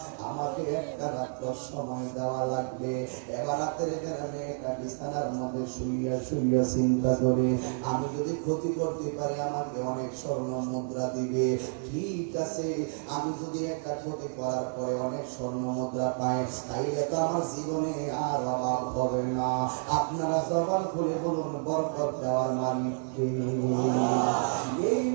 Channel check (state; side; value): silent; left; digital silence